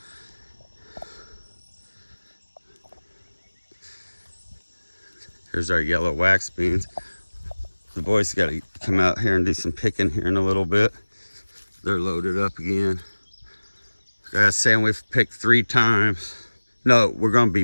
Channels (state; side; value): inverted; both; correlation -1.00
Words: Here's our yellow wax beans. The boys got to come out here and do some picking here in a little bit. They're loaded up again. Guys saying we've picked 3 times. No, we're gonna be